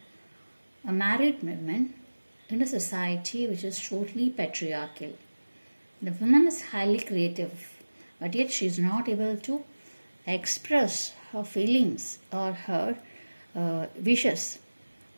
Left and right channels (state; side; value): inverted; both; correlation -1.00